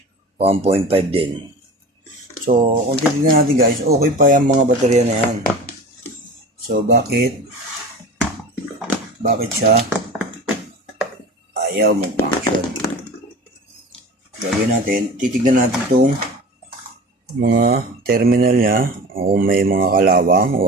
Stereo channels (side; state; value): both; normal; correlation 0.35